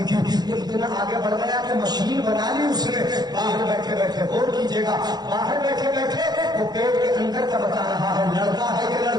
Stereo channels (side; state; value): left; late; 0.20 ms